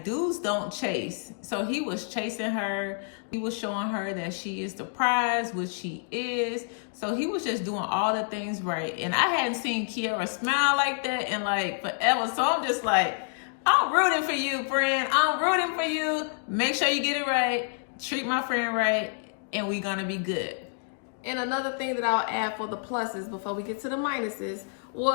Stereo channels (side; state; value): right; silent; digital silence